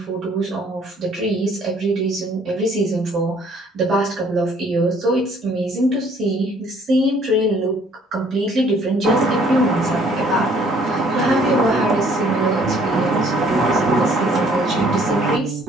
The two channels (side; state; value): both; normal; correlation 0.60